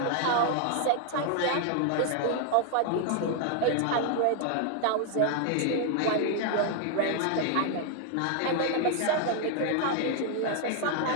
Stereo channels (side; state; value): both; different; correlation 0.00